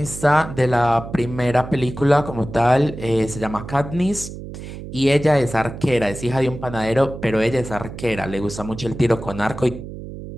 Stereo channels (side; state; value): right; noise; hum, 11 dB below the sound